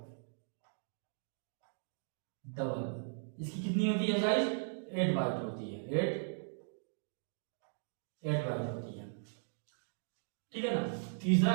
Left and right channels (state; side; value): silent; left; digital silence